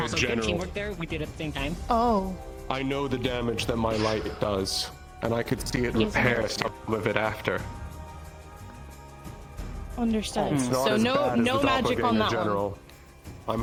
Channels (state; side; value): identical; both; correlation 1.00